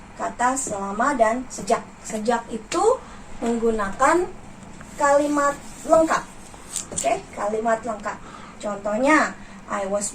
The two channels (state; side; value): identical; both; correlation 1.00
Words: kata selama dan sejak. Sejak itu menggunakan kalimat lengkap. Oke, kalimat lengkap. Contohnya, I was